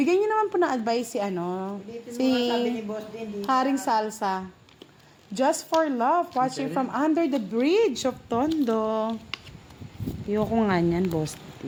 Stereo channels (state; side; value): identical; both; correlation 1.00